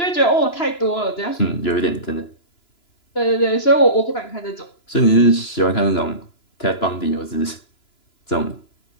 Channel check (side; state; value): right; late; 2.9 ms